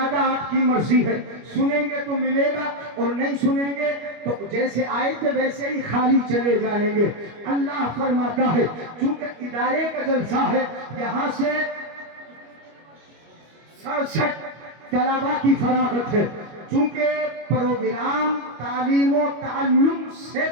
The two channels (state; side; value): late; left; 25 ms